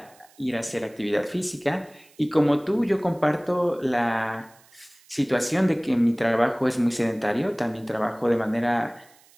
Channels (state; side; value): noise; right; hiss, 29 dB below the sound